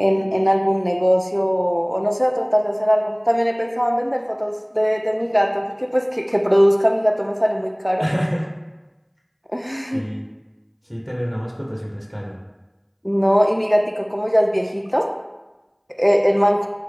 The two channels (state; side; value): identical; both; correlation 1.00